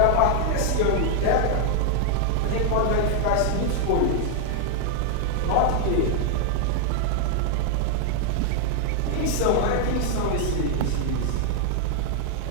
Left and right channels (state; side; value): different; both; correlation 0.00